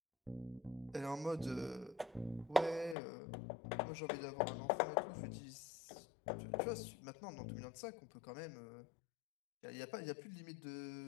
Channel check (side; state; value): right; drops out; at 3.0 s